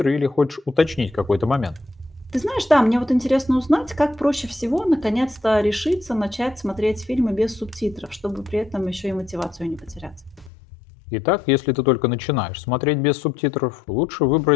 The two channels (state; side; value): drops out; right; at 10.5 s